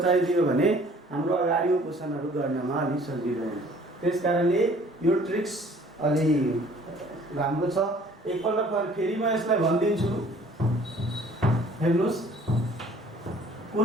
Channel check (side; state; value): both; normal; correlation 0.54